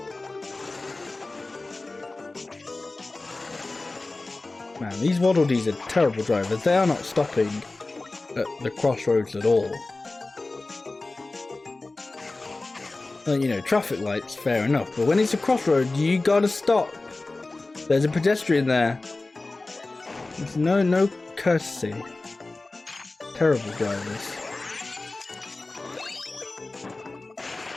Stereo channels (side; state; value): right; quieter; 3.2 dB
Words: Man, these Waddle Dees are terrible drivers. They are not stopping at the crossroads at all. Well, you know, traffic lights, fair enough, but when it's a crossroad, you gotta stop. There's a pedestrian there. There's no courtesy. Terrible drivers.